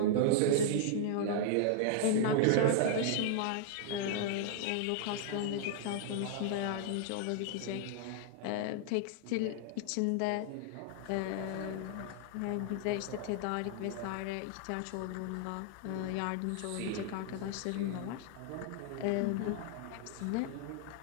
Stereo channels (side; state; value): both; different; correlation -0.01